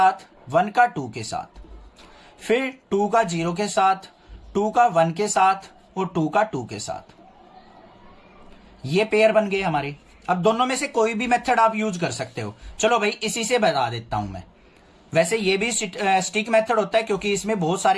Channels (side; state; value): both; identical; correlation 1.00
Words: 1 का 2 के साथ, फिर 2 का 0 के साथ, 2 का 1 के साथ और 2 का 2 के साथ। ये पेयर बन गए हमारे। अब दोनों में से कोई भी मेथड आप यूज कर सकते हो। चलो भाई इसी से बता देता हूं मैं। वैसे ये भी स्टिक मेथड होता है क्योंकि इसमें बहुत